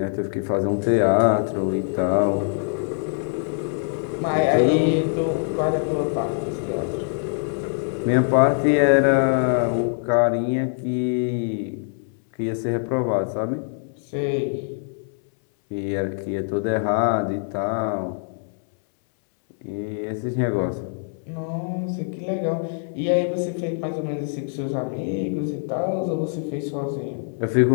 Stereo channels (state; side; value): silent; right; 63 dB below the other